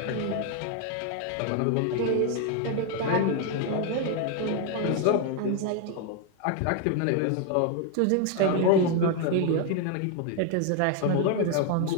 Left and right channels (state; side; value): different; both; correlation 0.01